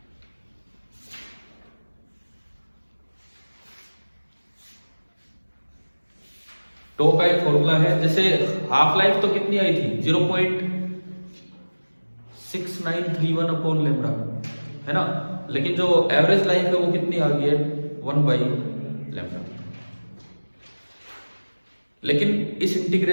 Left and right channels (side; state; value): both; inverted; correlation -1.00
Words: टो का एक फॉर्मूला है, जैसे हाफ लाइफ तो कितनी आई थी 0.6931/λ है ना, लेकिन जो एवरेज लाइफ है वो कितनी आ गई है 1/λ। लेकिन इस